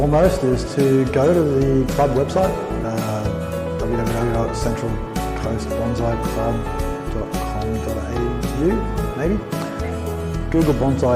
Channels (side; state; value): both; identical; correlation 1.00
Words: is to go to the club website, www.centralcoastbonsaiClub.com.au, maybe. Google